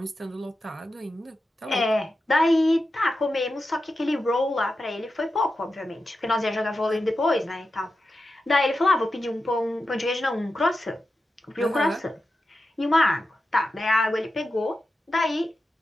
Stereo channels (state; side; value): normal; both; correlation 0.91